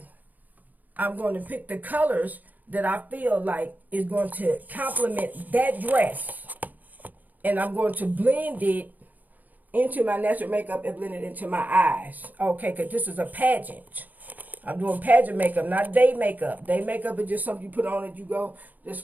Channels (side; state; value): left; late; 0.082 ms